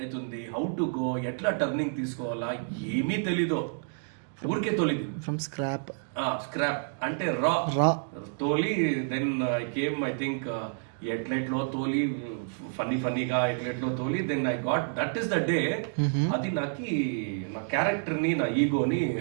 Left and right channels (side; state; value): left; silent; digital silence